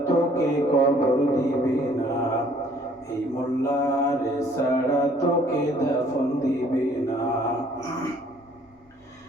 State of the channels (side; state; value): both; normal; correlation 0.59